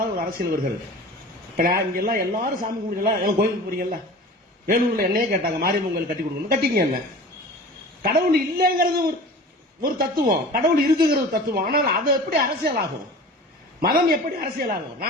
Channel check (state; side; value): normal; both; correlation 0.39